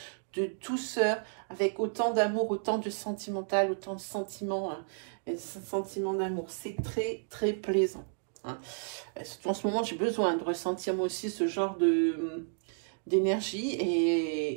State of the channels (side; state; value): left; silent; digital silence